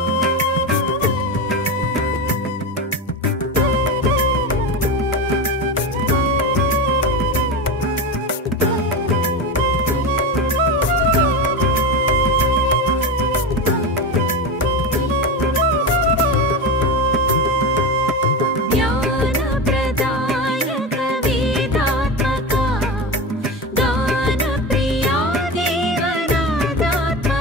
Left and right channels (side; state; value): both; normal; correlation 0.21